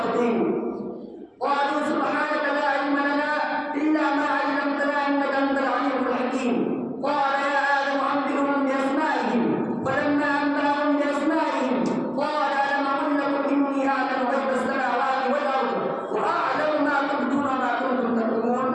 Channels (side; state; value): both; identical; correlation 1.00